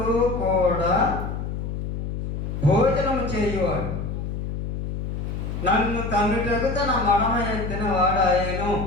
కూడా భోజనము చేయువాడు నన్ను తన్నుటకు తన మడమ ఎత్తిన వాడాయను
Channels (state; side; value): noise; left; hum, 4 dB below the sound